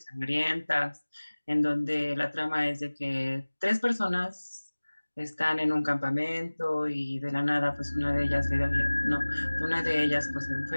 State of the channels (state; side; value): inverted; both; correlation -1.00